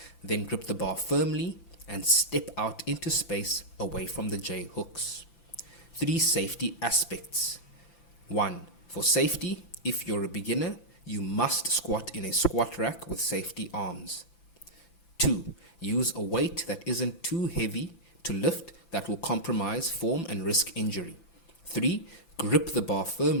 Then grip the bar firmly and step out into space away from the J hooks. 3 safety aspects. 1. For safety, if you're a beginner, you must squat in a squat rack with safety arms. 2. Use a weight that isn't too heavy to lift that will compromise form and risk injury. 3. Grip the bar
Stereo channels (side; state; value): right; late; 5.9 ms